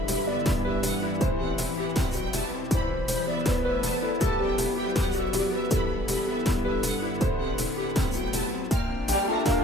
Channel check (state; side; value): normal; both; correlation 0.57